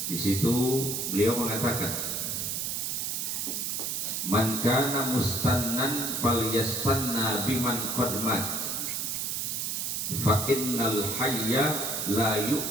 Di situ beliau mengatakan, man kana mustannan falyastanna biman qad mat fa innal hayya la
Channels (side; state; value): right; noise; hiss, 1 dB below the sound